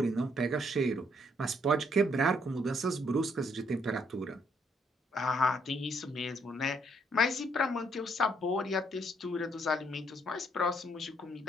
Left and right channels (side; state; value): both; normal; correlation 0.70